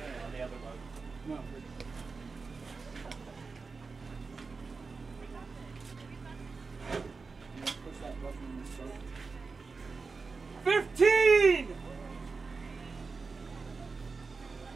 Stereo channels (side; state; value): left; quieter; 4.4 dB